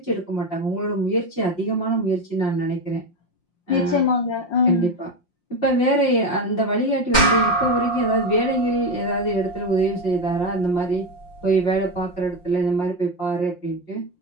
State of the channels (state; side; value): late; right; 5.6 ms